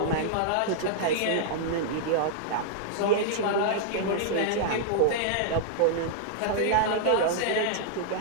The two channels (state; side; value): different; both; correlation -0.01